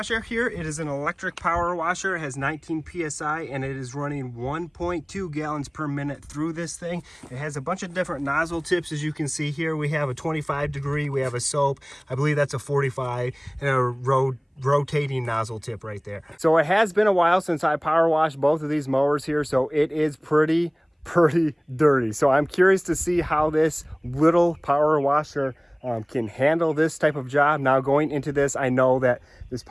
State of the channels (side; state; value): both; identical; correlation 1.00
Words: here. It is an electric power washer. It has 19 PSI and it is running 1.2 gallons per minute through this thing. It has a bunch of different nozzle tips, as you can see here. We have a 25 degree, we have a soap, I believe that's a 45, and a rotating nozzle tip right there. So it has been a while since I power washed both of these mowers here, so it is pretty dirty. So I'm curious to see how this little power washer can handle this type of job. Now going into this, I know that this